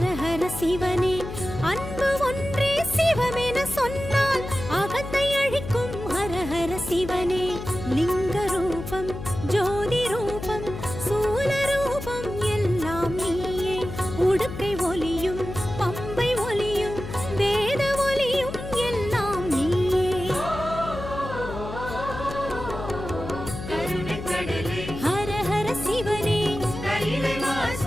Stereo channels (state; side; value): noise; left; hum, 9 dB below the sound